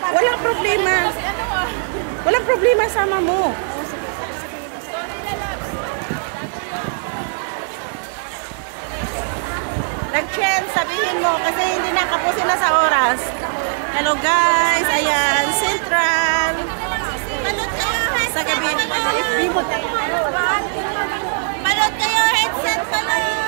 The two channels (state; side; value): silent; left; 66 dB below the other